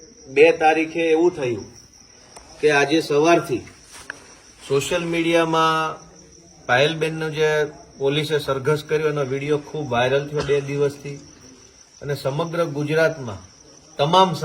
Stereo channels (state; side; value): identical; both; correlation 1.00